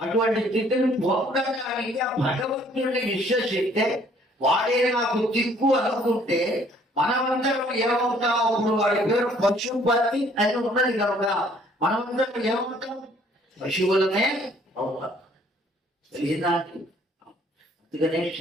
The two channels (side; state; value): both; normal; correlation 0.60